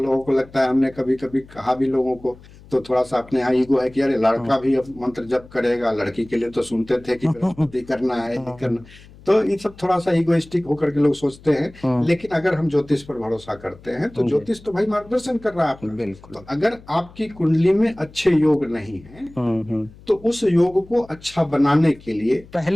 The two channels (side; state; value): left; noise; hum, 22 dB below the sound